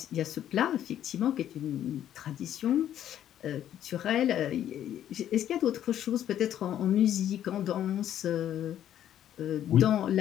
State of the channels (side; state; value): right; quieter; 11.0 dB